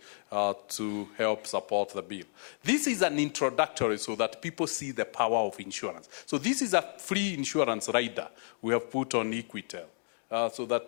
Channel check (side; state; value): right; silent; digital silence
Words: to help support the bill. This is an introductory so that people see the power of insurance. So this is a free insurance rider we have put on Equitel, so